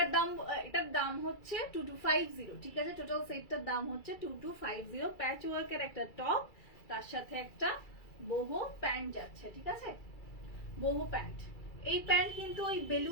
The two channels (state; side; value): late; right; 2.3 ms